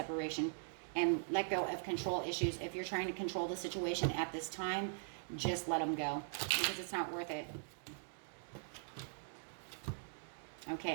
And let go of control issues. If you're trying to control the situation at this time, just let them go because it's not worth it.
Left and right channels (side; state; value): left; silent; digital silence